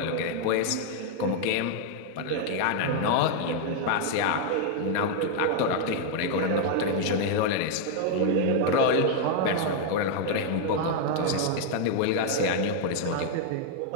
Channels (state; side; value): different; both; correlation 0.00